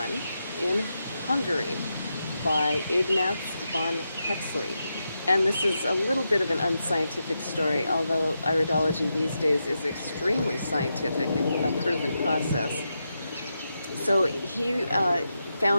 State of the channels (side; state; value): both; inverted; correlation -0.86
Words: in Hungary by Ignaz von Hexley. And this is a little bit of an unscientific story, although iridology these days is extremely scientific and a proven process. So he